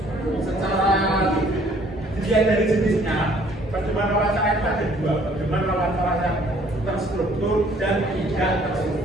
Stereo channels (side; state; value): both; normal; correlation 0.59